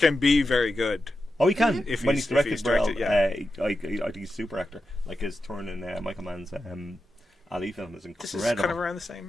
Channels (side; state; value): both; normal; correlation 0.90